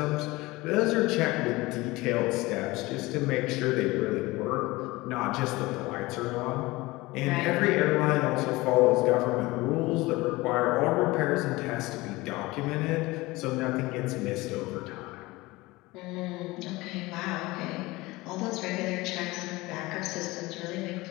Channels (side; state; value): right; quieter; 21.0 dB